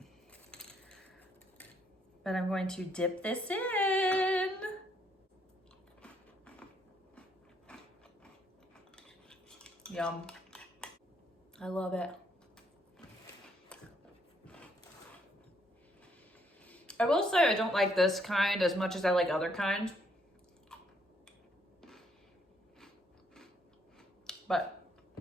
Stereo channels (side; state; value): both; normal; correlation 0.70